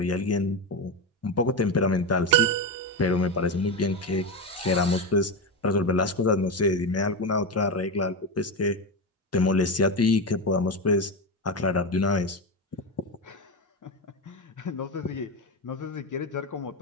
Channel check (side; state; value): both; normal; correlation 0.16